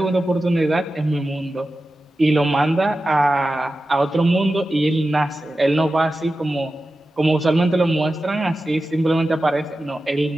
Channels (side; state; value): both; normal; correlation 0.93